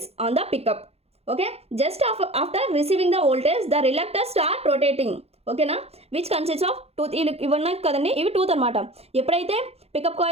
on the pickup. Okay, just after receiving the voltage the reluctor start rotating. ఓకేనా, విచ్ కన్సిస్ట్ ఆఫ్ టూత్. ఇవి ఉన్నాయి కదండి, ఇవి టూత్ అనమాట. ఎప్పుడైతే పికప్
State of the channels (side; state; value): left; late; 0.29 ms